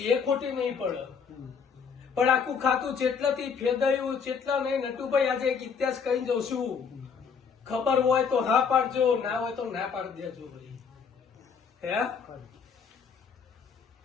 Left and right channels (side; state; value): right; quieter; 6.2 dB